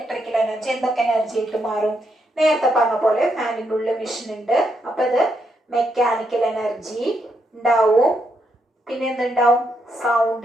എനർജി എന്തൊക്കെ എനർജി ആയിട്ട് മാറും? നേരത്തെ പറഞ്ഞ പോലെ ഫാനിൻ്റെ ഉള്ളിൽ മെഷീൻ ഉണ്ട്. അപ്പൊ ഇത് മെക്കാനിക്കൽ എനർജി ഉണ്ടാവും. പിന്നെ എന്തുണ്ടാവും?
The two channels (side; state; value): both; normal; correlation 0.79